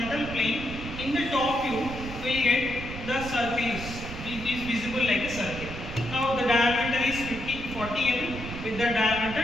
plane, in the top view we get the circle is visible like a circle. Now the diameter is 40 mm. With the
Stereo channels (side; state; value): right; noise; rumble, 9 dB below the sound